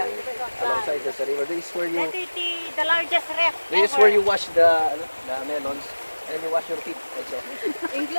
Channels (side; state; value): both; inverted; correlation -1.00